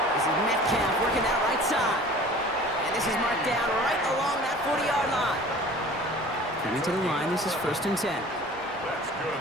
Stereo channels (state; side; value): normal; both; correlation 0.44